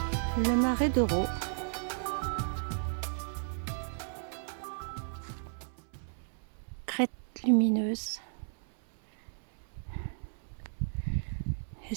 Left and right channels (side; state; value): left; silent; 55 dB below the other